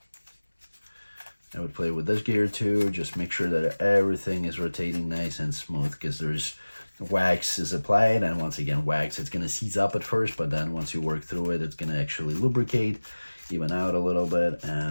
I would play with this gear too, just make sure that everything is rotating nice and smooth, because there's wax is applied, and once again, wax, it's going to seize up at first, but then once you work through it, it's going to actually lubricate, even out a little bit,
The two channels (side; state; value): both; inverted; correlation -1.00